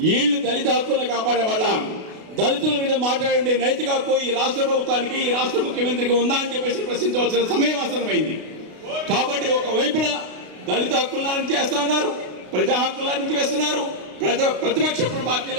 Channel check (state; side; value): late; left; 32 ms